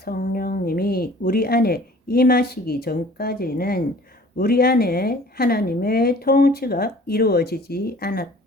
우리 안에 임하시기 전까지는 우리 안에 하나님의 통치가 이루어지지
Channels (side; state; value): both; normal; correlation 0.49